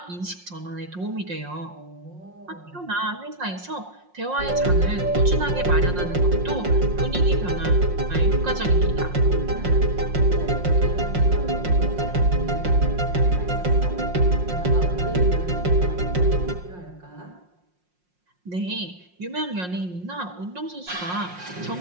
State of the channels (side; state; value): left; late; 5.6 ms